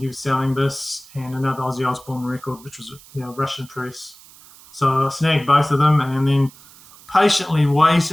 was selling this and another Ozzy Osbourne record, which was Russian press. So I snagged both of them, and then patiently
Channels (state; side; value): noise; right; hiss, 23 dB below the sound